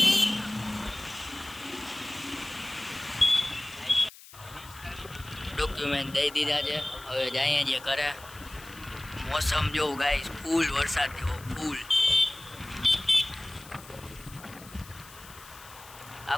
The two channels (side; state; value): left; noise; hiss, 19 dB below the sound